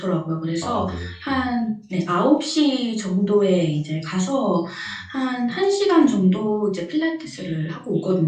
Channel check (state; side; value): identical; both; correlation 1.00